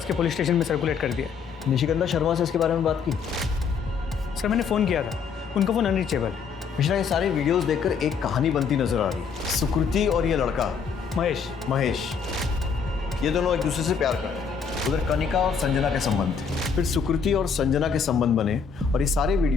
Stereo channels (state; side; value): quieter; right; 6.0 dB